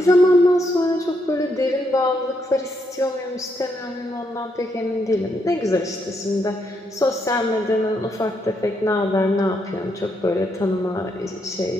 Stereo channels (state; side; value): normal; both; correlation 0.77